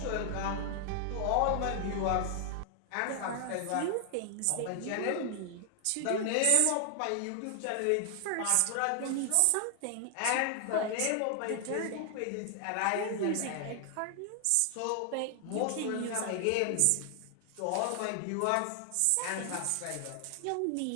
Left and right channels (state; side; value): different; both; correlation 0.00